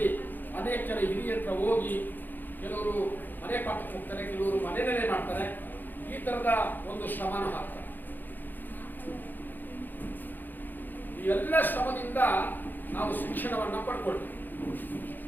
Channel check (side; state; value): right; late; 0.089 ms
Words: ಅನೇಕ ಜನ ಹಿರಿಯ ಹತ್ರ ಹೋಗಿ ಕೆಲವರು ಮನೆ ಪಾಠಕ್ಕೆ ಹೋಗ್ತಾರೆ, ಕೆಲವರು ಮನೆಯಲ್ಲೇ ಮಾಡ್ತಾರೆ. ಈ ತರದ ಒಂದು ಶ್ರಮನ ಹಾಕ್ತಾರೆ. ಈ ಎಲ್ಲ ಶ್ರಮದಿಂದ ನಾವು ಶಿಕ್ಷಣವನ್ನು ಪಡ್ಕೊಳ್ತೀವಿ.